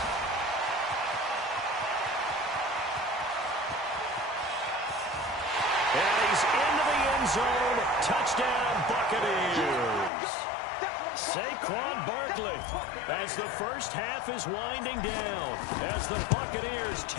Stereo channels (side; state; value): right; drops out; at 10.1 s